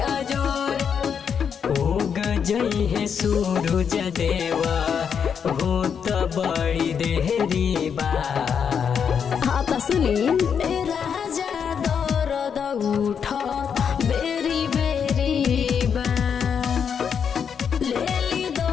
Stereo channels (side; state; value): right; quieter; 7.2 dB